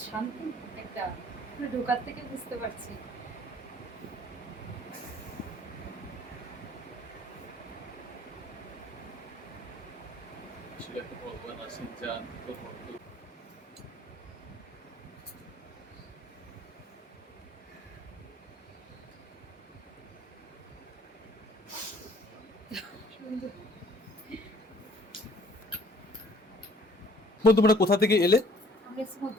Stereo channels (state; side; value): normal; both; correlation 0.56